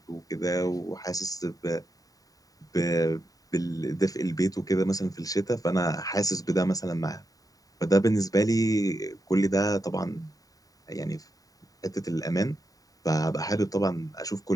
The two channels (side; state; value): right; late; 0.18 ms